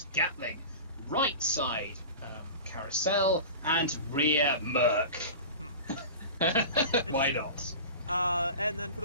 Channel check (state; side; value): inverted; both; correlation -0.33